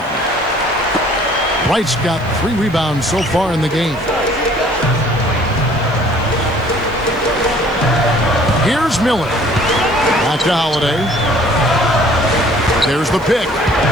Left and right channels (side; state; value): right; noise; hiss, 28 dB below the sound